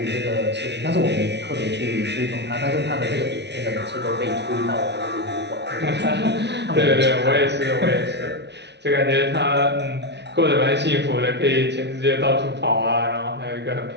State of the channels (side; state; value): left; late; 0.50 ms